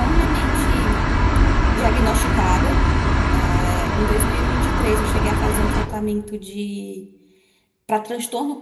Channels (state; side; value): identical; both; correlation 1.00